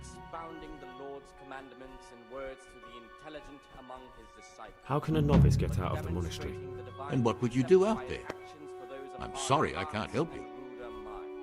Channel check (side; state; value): both; identical; correlation 1.00